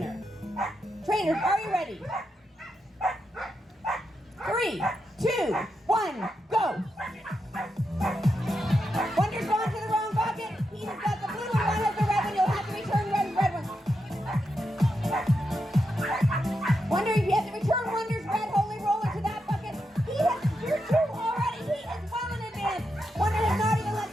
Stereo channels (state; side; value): normal; both; correlation 0.85